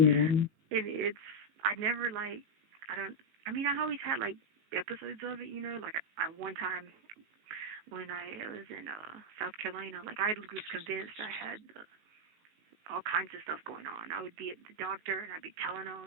Yeah. And I always had like episodes of it, like I one time when I was in South Carolina, like I was convinced I had all kinds of stuff going on. I would be at the doctor and I'd be telling them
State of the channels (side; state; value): left; late; 19 ms